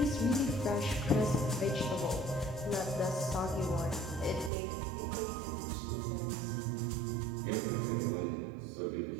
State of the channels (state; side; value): drops out; left; at 4.5 s